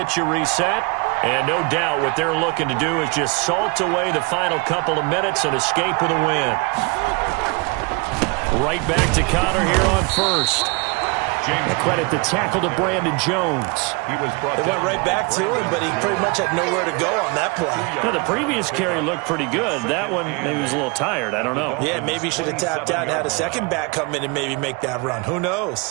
you reset. And no doubt what they're looking to do is just salt away the final couple of minutes and escape with a win. Right back to Conner here on first. And credit the tackle to Brandon Jones. It went right back to him, but he pretty much had nowhere to go on that play. Now, the previous carry looked pretty good. That one, maybe he was a little tired. I don't know. Yeah, maybe he should have tapped out and had a second back come in and maybe make that run. Who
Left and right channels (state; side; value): quieter; left; 28.6 dB